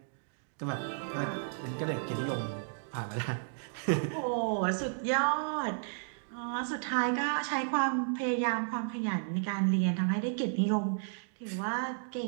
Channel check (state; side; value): silent; left; digital silence